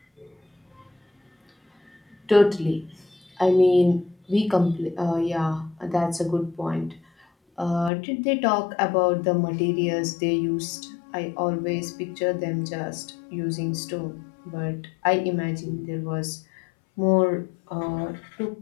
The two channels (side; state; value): right; drops out; at 7.9 s